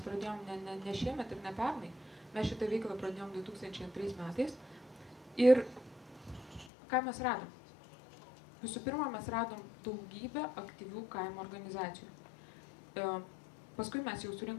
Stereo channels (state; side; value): drops out; right; at 6.7 s